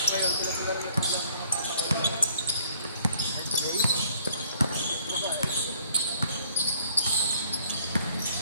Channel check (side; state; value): both; inverted; correlation -0.60